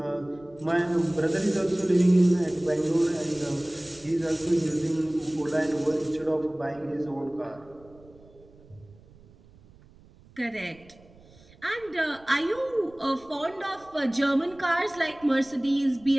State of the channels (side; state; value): right; noise; rumble, 25 dB below the sound